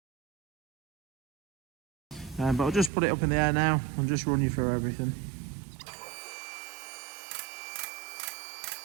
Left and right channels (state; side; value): drops out; left; at 2.9 s